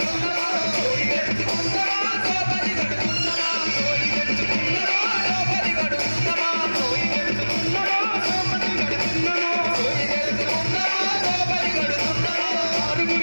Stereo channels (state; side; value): inverted; both; correlation -1.00